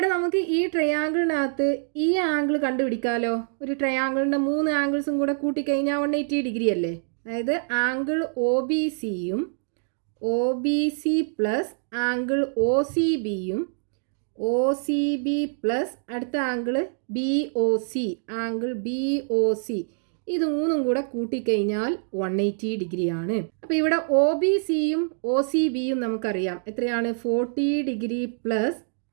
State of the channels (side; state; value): left; silent; digital silence